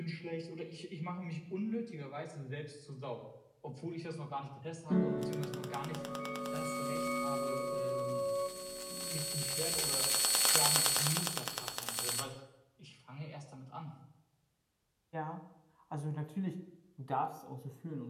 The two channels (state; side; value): identical; both; correlation 1.00